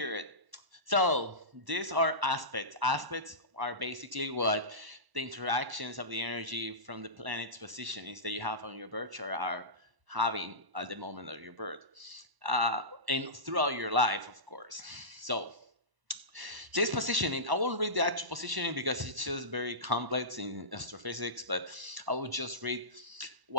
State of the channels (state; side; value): late; left; 1.0 ms